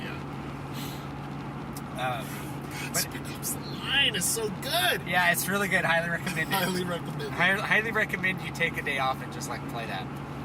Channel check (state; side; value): identical; both; correlation 1.00